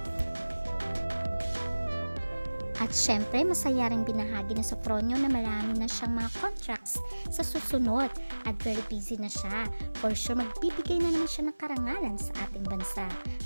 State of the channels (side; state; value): both; inverted; correlation -1.00